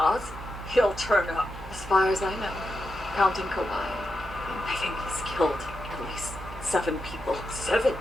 he'll turn up. As far as I know, counting Kawhi, I think he's killed at least 7 people. 7?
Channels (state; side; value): noise; right; hum, 11 dB below the sound